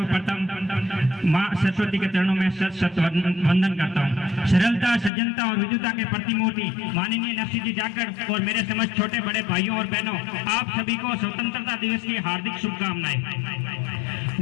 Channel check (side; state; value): right; drops out; at 5.1 s